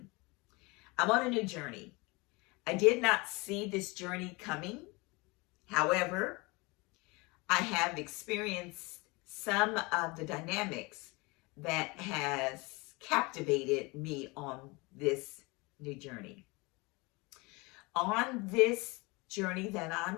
I'm on a new journey. I did not see this journey coming. However, I have experienced some of the dynamics that has captivated me on this new journey. On this journey that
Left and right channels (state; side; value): quieter; right; 25.8 dB